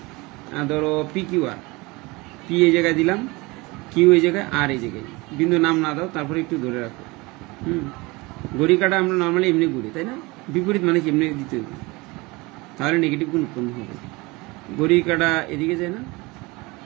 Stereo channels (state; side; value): quieter; left; 24.0 dB